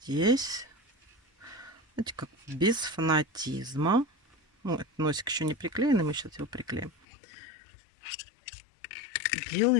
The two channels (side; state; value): right; drops out; at 7.1 s